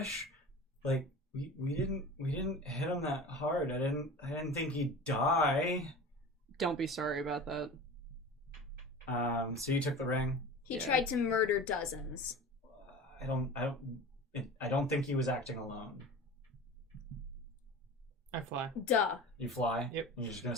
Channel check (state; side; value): normal; both; correlation 0.35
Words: Like we didn't hit him that hard. I didn't think he'd die. Don't be sorry about that. So you took the ring. He Yeah. tried to murder dozens. I don't think he was acting alone. I fly. Duh. You fly. Yep. You're just gonna